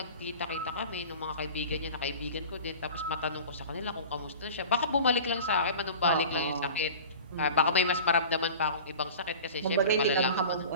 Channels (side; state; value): both; inverted; correlation -0.38